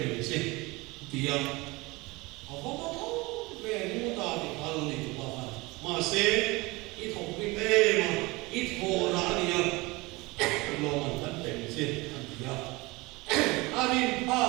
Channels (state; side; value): quieter; left; 23.3 dB